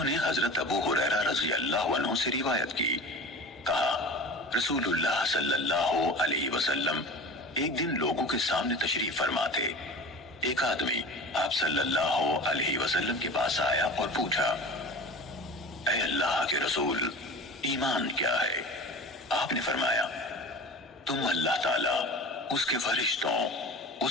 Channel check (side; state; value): both; normal; correlation 0.36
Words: نے حضرت ابو ہریرہ رضی اللہ عنہ سے روایت کی۔ کہا رسول اللہ صلی اللہ علیہ وسلم ایک دن لوگوں کے سامنے تشریف فرما تھے۔ ایک آدمی آپ صلی اللہ علیہ وسلم کے پاس آیا اور پوچھا، اے اللہ کے رسول، ایمان کیا ہے؟ آپ نے فرمایا، تم اللہ تعالیٰ، اس کے فرشتوں،